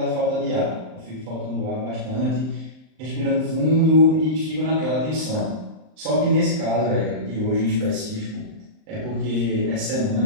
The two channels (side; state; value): left; late; 38 ms